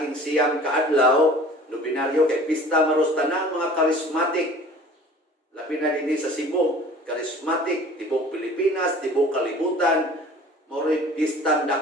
siyang kaadlaw, nobinaryo kay pista maros tanang mga charismatic. Labi na dinhi sa Cebu, charismatic, tibok Pilipinas, tibok kalibutan, moro'y pistang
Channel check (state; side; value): normal; both; correlation 0.46